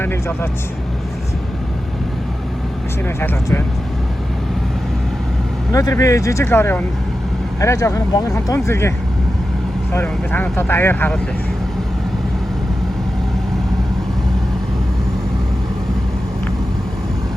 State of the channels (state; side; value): normal; both; correlation 0.92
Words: нэг жолооч машинаа шалгаж байна. Өнөөдөр би жижиг лори унна. Арай жоохон бонгохон тун зэргийн лори унна. Би танад одоо аяар харуулъя.